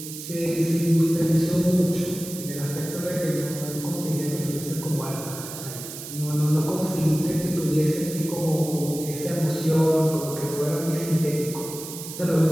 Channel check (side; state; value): right; noise; hiss, 10 dB below the sound